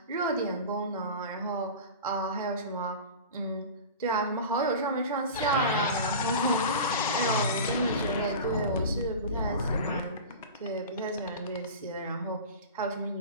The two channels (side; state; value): both; inverted; correlation -0.32